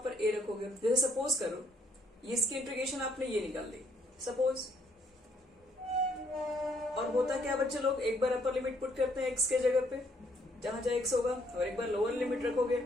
ए रखोगे। जैसे सपोज करो इसकी इंटीग्रेशन आपने ये निकाल दी सपोज, और होता क्या बच्चे लोग, एक बार अपर लिमिट पुट करते हैं एक्स के जगह पे जहां जहां एक्स होगा, और एक बार लोअर लिमिट रखोगे,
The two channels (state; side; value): normal; both; correlation 0.67